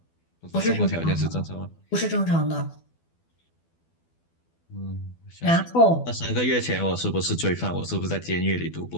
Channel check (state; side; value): late; right; 12 ms